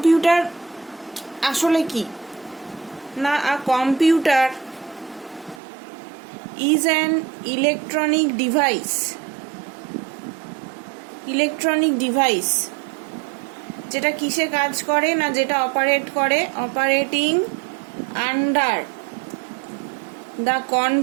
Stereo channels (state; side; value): drops out; left; at 5.6 s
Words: আসলে কি না, computer is an electronic device যেটা কিসে কাজ করে না, যেটা operating under the